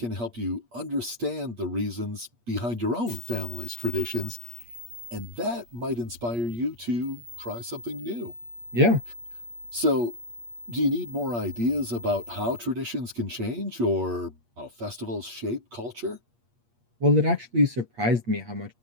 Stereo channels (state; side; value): late; left; 8.5 ms